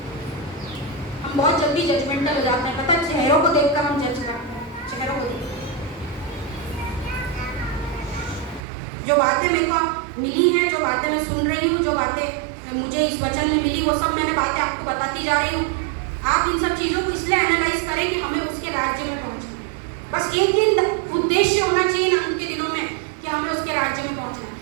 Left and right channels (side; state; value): left; drops out; at 8.7 s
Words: हम बहुत जल्दी जजमेंटल हो जाते हैं, पता है, चेहरों को देखकर हम जज करते हैं, चेहरों को देखकर। जो बातें मेरे को मिली हैं, जो बातें मैं सुन रही हूँ, जो बातें मुझे इस वचन में मिली, वो सब मैंने बातें आपको बताती जा रही हूँ। आप इन सब चीज़ों को इसलिए एनालाइज करें कि हमें उसके राज्य में पहुँचना। बस एक ही उद्देश्य होना चाहिए ना उनके दिनों में कि हमें उसके राज्य में पहुँचना है।